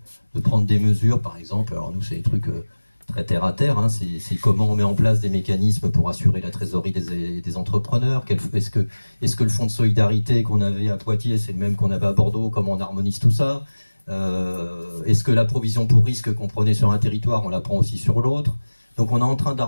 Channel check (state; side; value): inverted; both; correlation -1.00